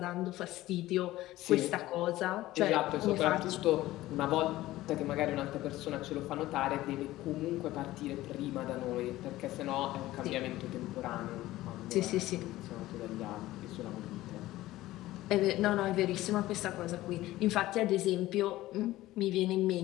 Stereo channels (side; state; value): right; quieter; 16.4 dB